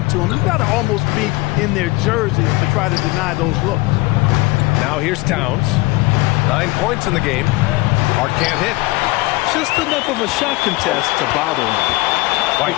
them. You've got to almost be in their jerseys to try to deny those looks. Now here's Towns. 9 points in the game. Hart can't hit. Just enough of a shot contest to bother him. White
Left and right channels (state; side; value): quieter; right; 21.6 dB